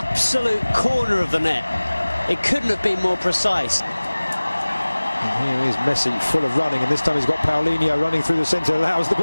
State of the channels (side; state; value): both; inverted; correlation -1.00